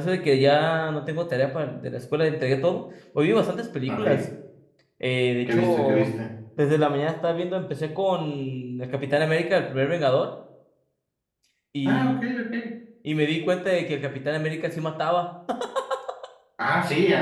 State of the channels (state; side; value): identical; both; correlation 1.00